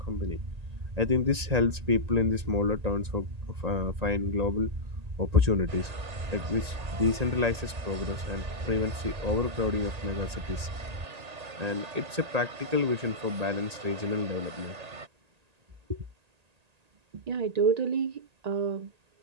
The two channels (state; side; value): late; left; 1.8 ms